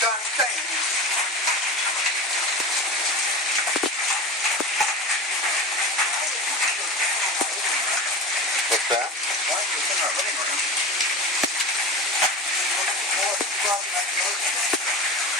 Done saying. What's that? Why is this in our living room?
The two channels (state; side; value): normal; both; correlation 0.28